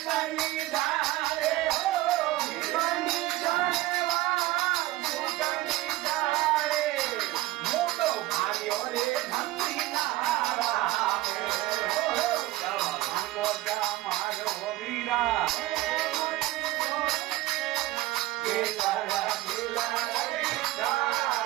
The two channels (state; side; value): quieter; left; 17.5 dB